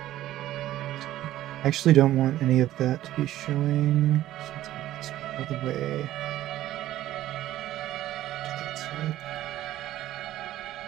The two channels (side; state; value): left; quieter; 13.9 dB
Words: I actually don't want any of that to be showing. So let's move this all the way to that side.